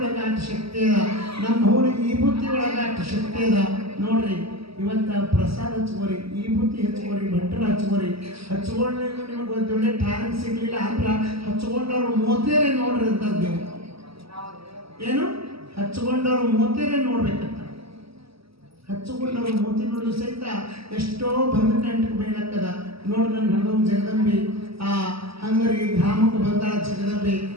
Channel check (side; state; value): left; late; 0.76 ms